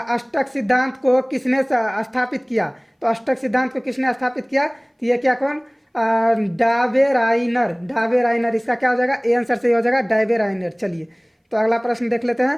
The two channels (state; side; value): identical; both; correlation 1.00